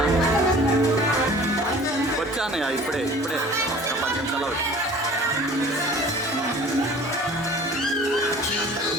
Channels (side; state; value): both; normal; correlation 0.46